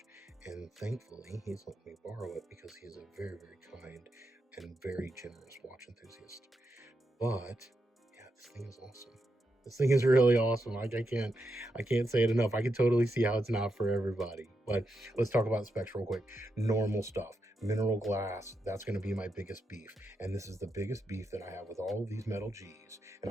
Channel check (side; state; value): both; normal; correlation 0.85